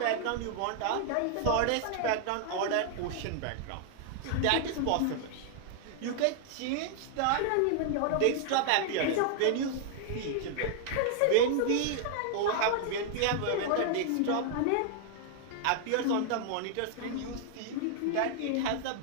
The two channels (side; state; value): both; different; correlation 0.00